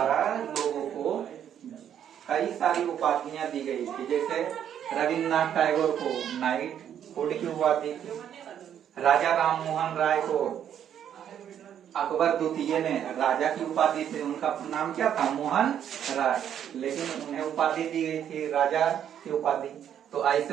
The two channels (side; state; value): left; quieter; 9.5 dB